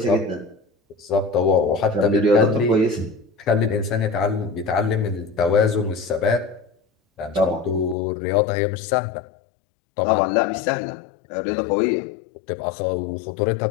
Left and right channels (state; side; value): drops out; right; at 8.0 s